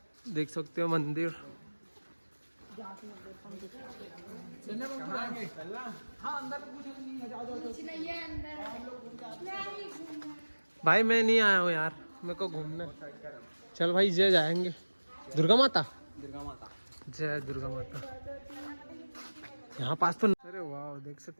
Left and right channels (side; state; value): both; inverted; correlation -1.00